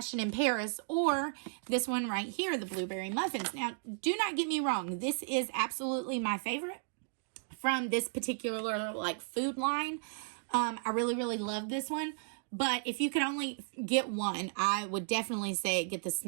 in Paris or this one right here, the Blueberry Muffins. Now, do not get me wrong. This is absolutely my favorite from this particular like food line. I really, really love this one. But if you could only get one, I would definitely say get the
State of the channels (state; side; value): silent; left; digital silence